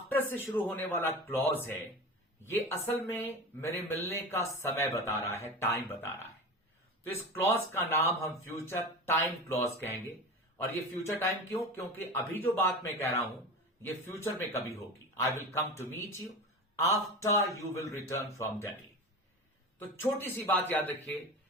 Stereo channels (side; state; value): both; normal; correlation 0.29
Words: से शुरू होने वाला क्लॉज है, ये असल में मेरे मिलने का समय बता रहा है, टाइम बता रहा है। तो इस क्लॉज का नाम हम फ्यूचर टाइम क्लॉज कहेंगे। और ये फ्यूचर टाइम क्यों? क्योंकि अभी जो बात मैं कह रहा हूं ये फ्यूचर में कभी होगी। I will come to meet you after you will return from Delhi. तो छोटी सी बात याद रखिए